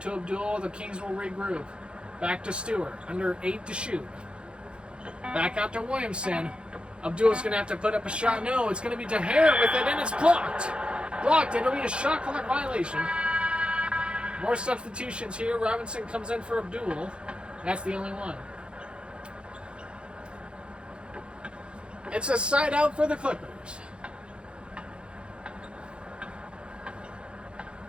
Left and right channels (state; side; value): late; left; 0.055 ms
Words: to Abdul. The Kings will regroup. Back to Stewart. Under 8 to shoot. Back out to Williamson. Abdul's going to have to put up a shot. No, it's going to be DeHare with it, and it's blocked. Blocked. It'll be a shot clock violation. More substitutions here. Robinson comes in for Abdul. That's the only one. It's a side out for the Clippers.